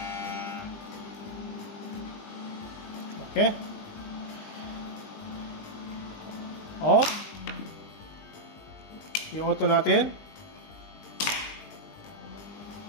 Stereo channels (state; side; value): late; right; 20 ms